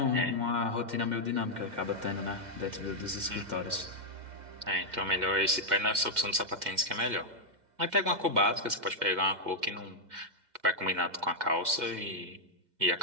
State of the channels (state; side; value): late; left; 2.1 ms